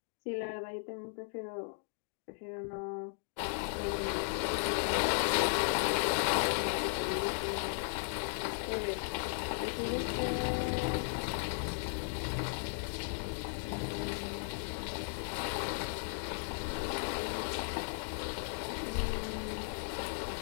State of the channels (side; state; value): right; silent; digital silence